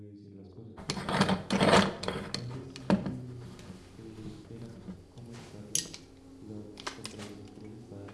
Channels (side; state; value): both; identical; correlation 1.00